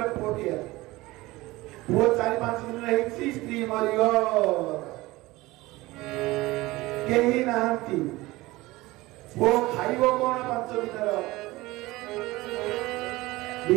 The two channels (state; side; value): quieter; left; 19.9 dB